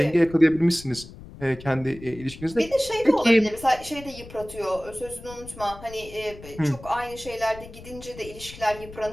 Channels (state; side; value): noise; left; rumble, 16 dB below the sound